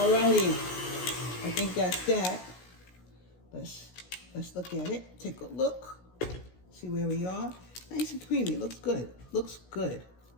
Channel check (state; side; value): late; right; 16 ms